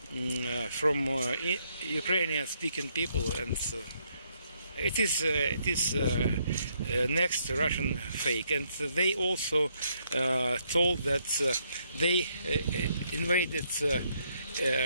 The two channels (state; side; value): inverted; both; correlation -0.73